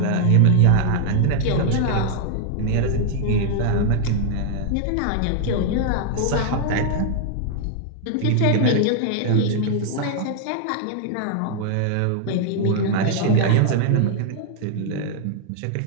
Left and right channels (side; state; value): both; different; correlation 0.00